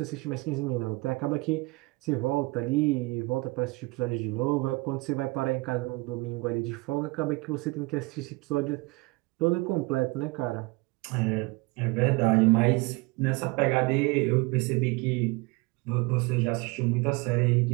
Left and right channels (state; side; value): quieter; left; 25.3 dB